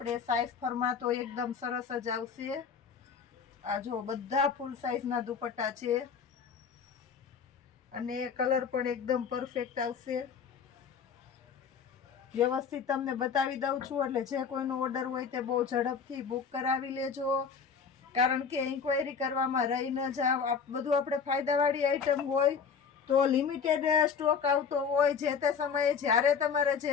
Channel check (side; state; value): right; quieter; 6.3 dB